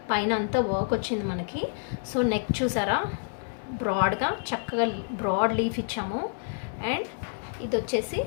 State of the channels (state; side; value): silent; right; digital silence